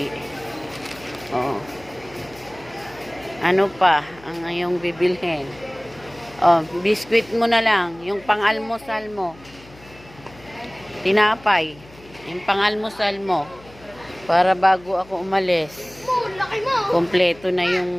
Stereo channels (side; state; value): left; noise; hum, 23 dB below the sound